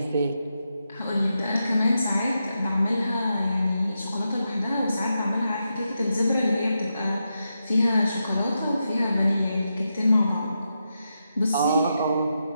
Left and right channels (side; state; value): both; inverted; correlation -0.86